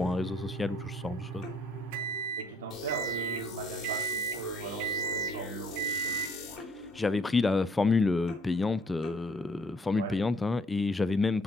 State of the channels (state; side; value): normal; both; correlation 0.63